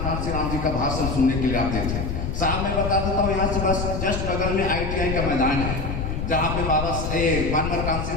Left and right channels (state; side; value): noise; left; rumble, 3 dB below the sound